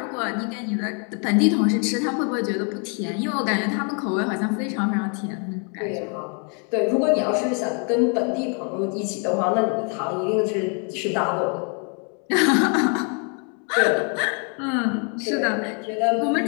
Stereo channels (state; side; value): quieter; right; 39.5 dB